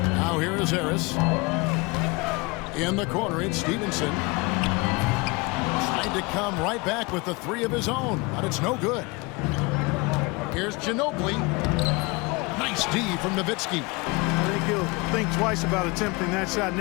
Now here is Harris. In the corner, it's Stevenson. Trying to come right back with the 3 of his own, but it's no good. Here's Ginobili. Nice D from Nowitzki. I think he'll think twice about attempting that shot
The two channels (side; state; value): right; quieter; 26.3 dB